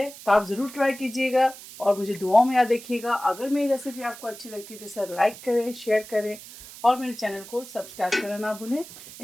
तो आप ज़रूर ट्राई कीजिएगा और मुझे दुआओं में याद रखिएगा। अगर मेरी रेसिपी आपको अच्छी लगती है तो इसे लाइक करें, शेयर करें और मेरे चैनल को सब्सक्राइब करना ना भूलें।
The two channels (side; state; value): right; noise; hiss, 16 dB below the sound